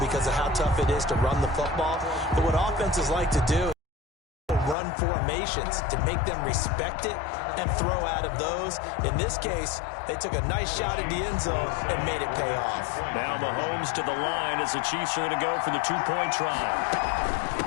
of how tough it is to run the football. But what offenses like to do is run formations to make them respect it and throw out of those. In this case, they took a nice shot at the end zone and made it pay off. Now Mahomes to the line as the Chiefs are going to go for the two-point try.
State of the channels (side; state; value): right; drops out; at 4.8 s